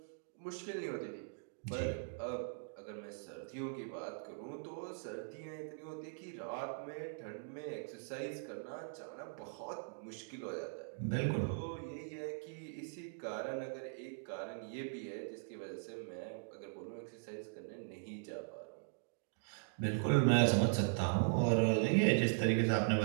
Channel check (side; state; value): left; silent; digital silence